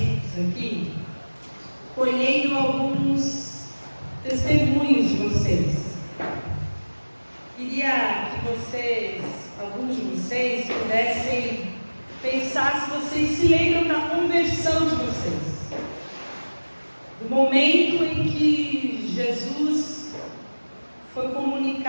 aqui, colhendo alguns testemunhos de vocês. Queria que vocês, alguns de vocês, pudessem pensar se vocês se lembram da conversão de vocês. Do momento em que Jesus foi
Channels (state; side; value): inverted; both; correlation -1.00